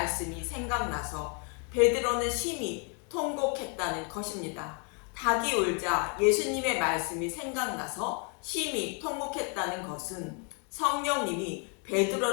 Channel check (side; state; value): right; quieter; 36.8 dB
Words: 생각나서 베드로는 심히 통곡했다는 것입니다. 닭이 울자 예수님의 말씀이 생각나서 심히 통곡했다는 것은 성령님이